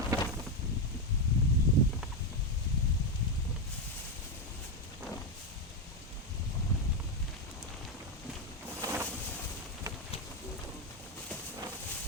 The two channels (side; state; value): both; normal; correlation 0.08